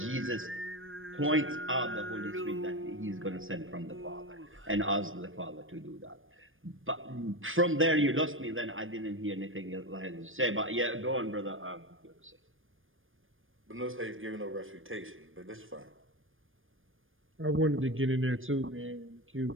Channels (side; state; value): left; late; 0.59 ms